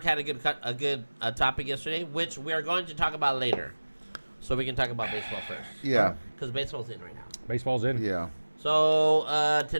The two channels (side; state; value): both; inverted; correlation -1.00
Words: had a good topic yesterday, which we are going to talk about later. So we can talk about baseball first. Yeah. Because baseball's in right now. Baseball's in. Yeah. So